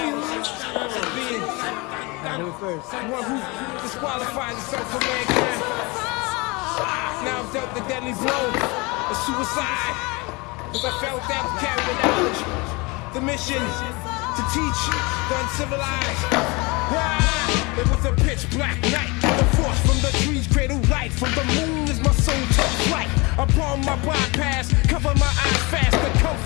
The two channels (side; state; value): right; quieter; 26.4 dB